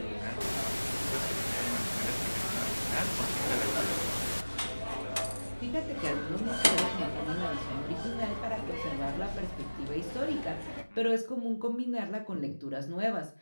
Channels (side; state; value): both; inverted; correlation -1.00